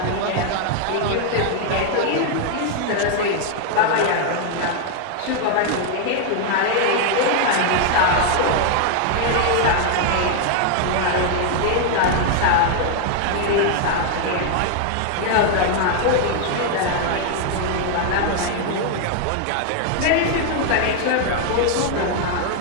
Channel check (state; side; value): different; both; correlation 0.00